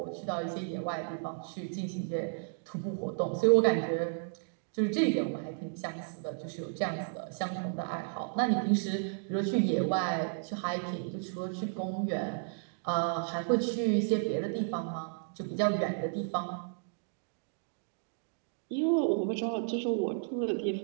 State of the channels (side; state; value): left; silent; digital silence